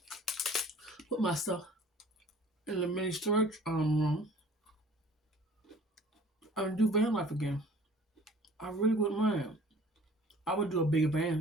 put my stuff in the mini storage room, and do van life again. I really wouldn't mind. I would do a bigger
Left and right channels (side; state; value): both; normal; correlation 0.49